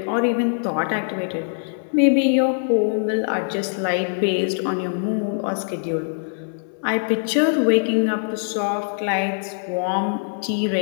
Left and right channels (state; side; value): silent; right; digital silence